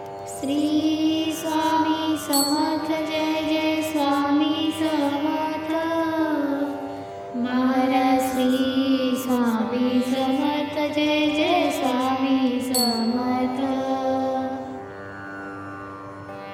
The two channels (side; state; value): both; identical; correlation 1.00